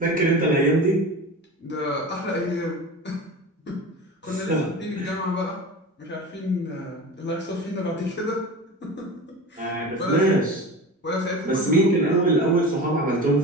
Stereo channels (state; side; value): normal; both; correlation 0.31